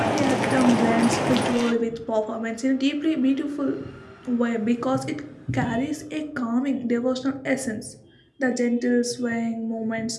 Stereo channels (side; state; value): both; identical; correlation 1.00